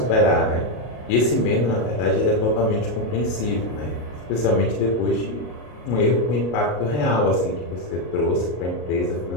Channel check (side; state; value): right; late; 33 ms